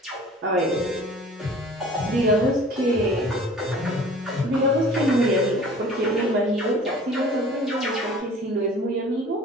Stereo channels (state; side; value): normal; both; correlation 0.46